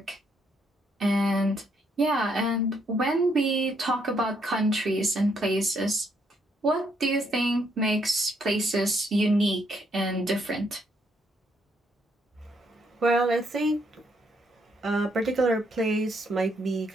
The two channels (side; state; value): both; normal; correlation 0.73